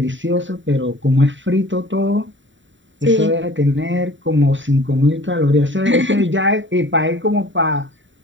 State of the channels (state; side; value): late; left; 0.54 ms